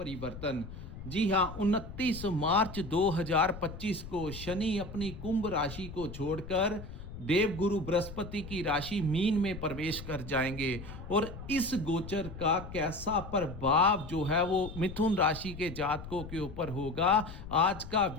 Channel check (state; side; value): noise; left; rumble, 12 dB below the sound